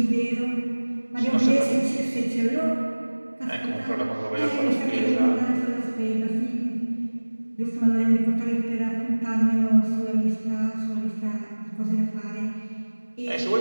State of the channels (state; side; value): inverted; both; correlation -1.00